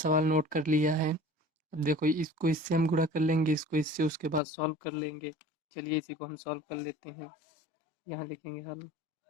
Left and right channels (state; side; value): drops out; right; at 4.4 s